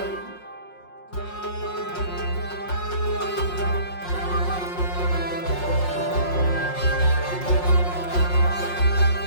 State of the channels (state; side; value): late; right; 5.5 ms